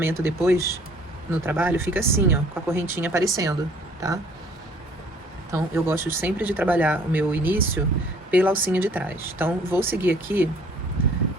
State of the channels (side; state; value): both; normal; correlation 0.56